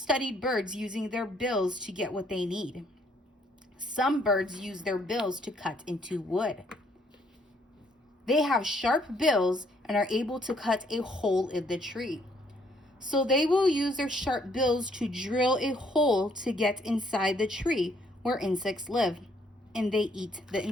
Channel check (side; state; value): both; normal; correlation 0.67